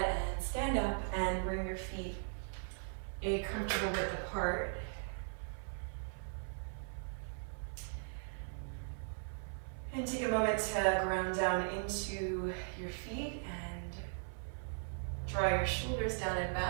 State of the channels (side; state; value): left; silent; 52 dB below the other